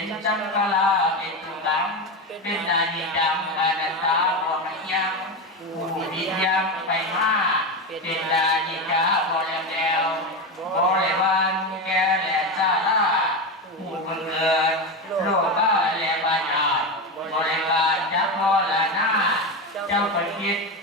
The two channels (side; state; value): both; normal; correlation 0.17